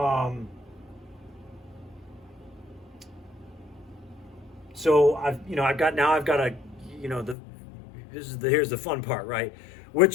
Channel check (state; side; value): drops out; right; at 7.4 s